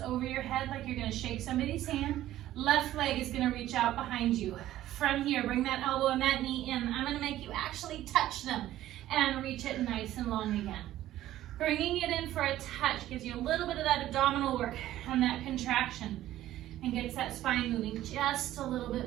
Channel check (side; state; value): left; quieter; 13.9 dB